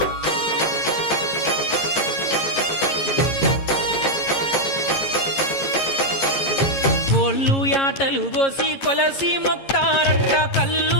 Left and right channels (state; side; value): late; right; 11 ms